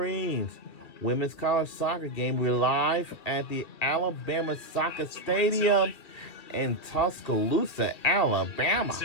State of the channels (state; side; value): late; right; 2.3 ms